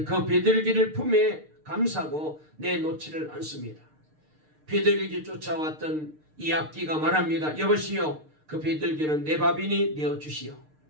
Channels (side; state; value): left; late; 6.6 ms